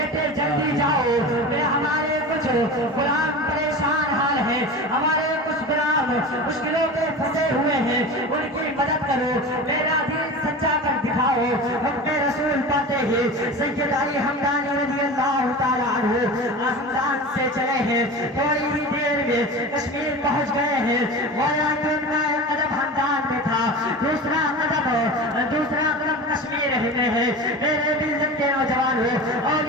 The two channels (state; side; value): normal; both; correlation 0.31